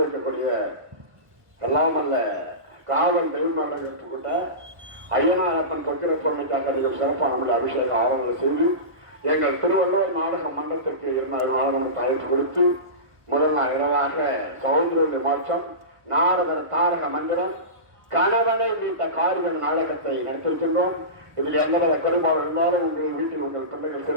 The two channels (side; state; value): left; late; 1.1 ms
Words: எல்லாம் அல்ல காவல் தெய்வமாக கொண்ட ஐயனாரப்பன் தொக்கிர பொருளுக்காக சிறப்பான அபிஷேக ஆவணங்கள் செய்து எங்கள் திருவள்ளுவர் நாடக மன்றத்திற்கு 2 நாடகம் அழைப்பு கொடுத்து முதல் நாள் இரவாக சகோதரருடைய மாற்றம் நாடக தாரக மந்திரம் கணவனை மீட்ட காரியம் நாடகத்தை நடத்திருக்கின்றோம். இதில் எந்தவித பெரும்பாலும் இருந்தாலும் உங்கள் வீட்டில் உங்கள் பிள்ளைகள்